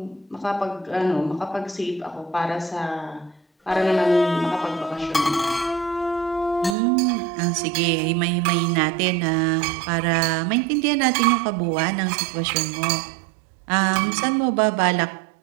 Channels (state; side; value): drops out; left; at 6.8 s